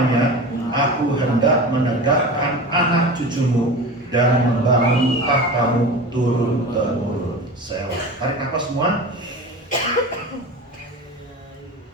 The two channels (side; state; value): both; normal; correlation 0.31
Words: aku hendak menegakkan anak cucumu dan membangun tahtamu turun-temurun. Selah. Tarik nafas semua.